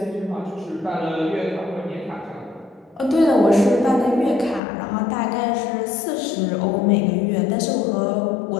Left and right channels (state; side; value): drops out; right; at 4.6 s